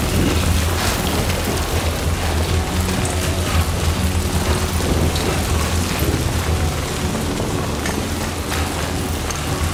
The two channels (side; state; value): both; identical; correlation 1.00